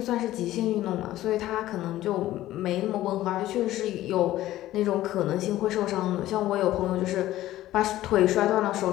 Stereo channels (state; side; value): quieter; right; 14.8 dB